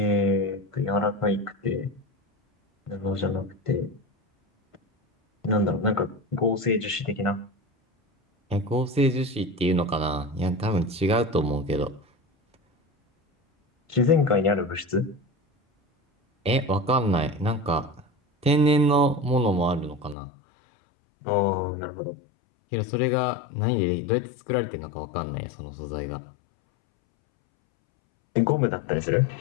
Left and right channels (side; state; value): right; drops out; at 20.2 s